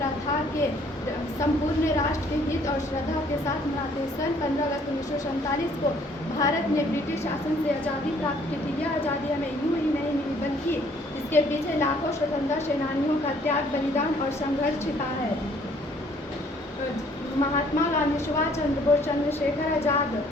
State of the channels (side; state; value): both; normal; correlation 0.61